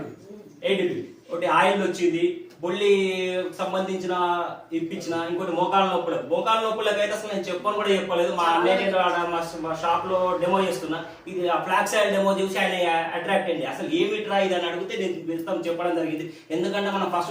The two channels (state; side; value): identical; both; correlation 1.00